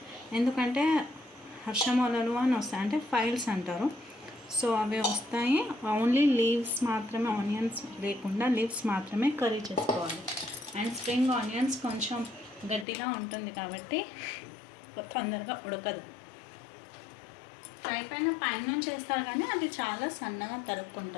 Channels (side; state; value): right; drops out; at 12.9 s